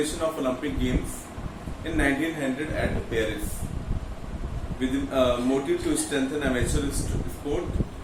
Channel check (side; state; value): both; identical; correlation 1.00